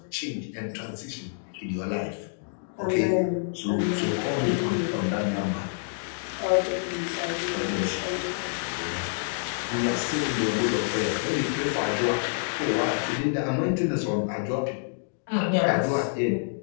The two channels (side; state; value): right; silent; digital silence